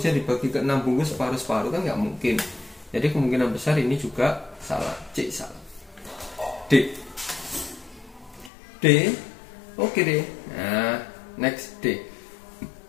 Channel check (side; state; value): right; drops out; at 8.5 s